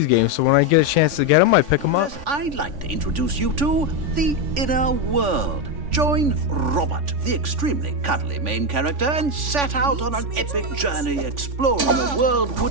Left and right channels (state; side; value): late; left; 3.5 ms